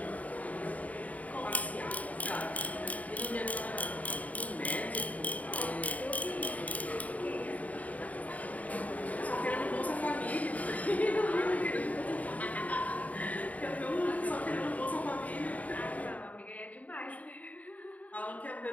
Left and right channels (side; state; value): right; late; 0.071 ms